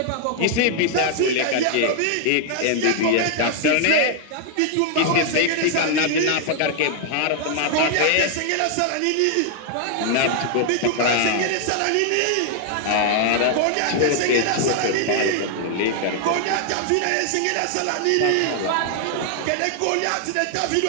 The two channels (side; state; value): both; different; correlation 0.00